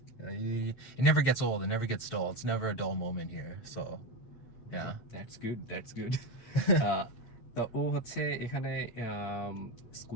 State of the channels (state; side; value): late; right; 7.5 ms